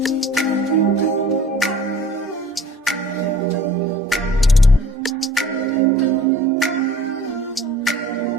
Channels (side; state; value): both; normal; correlation 0.49